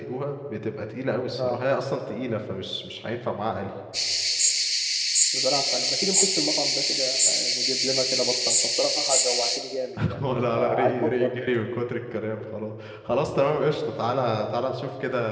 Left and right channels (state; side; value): identical; both; correlation 1.00